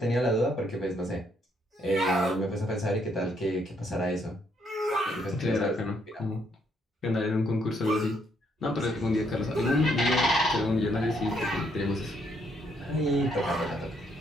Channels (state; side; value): normal; both; correlation 0.72